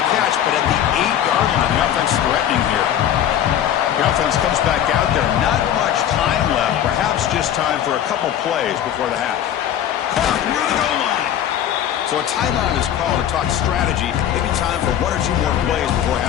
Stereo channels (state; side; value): quieter; right; 10.5 dB